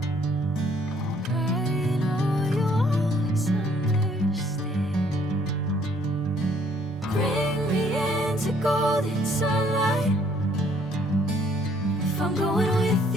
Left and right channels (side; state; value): both; normal; correlation 0.63